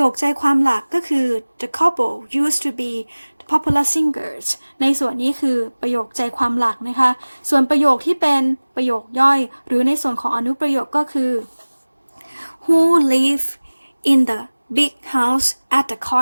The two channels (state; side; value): inverted; both; correlation -1.00